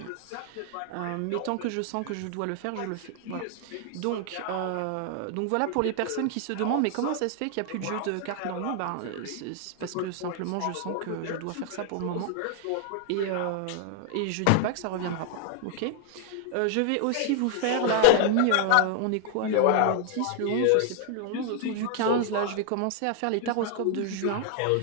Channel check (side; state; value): both; different; correlation 0.00